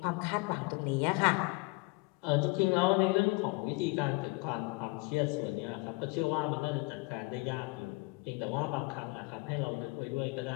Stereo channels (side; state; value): right; quieter; 26.1 dB